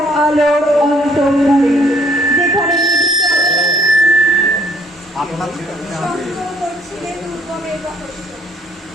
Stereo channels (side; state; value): both; normal; correlation 0.61